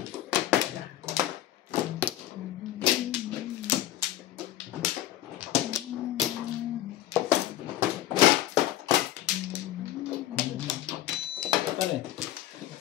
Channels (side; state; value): right; quieter; 13.5 dB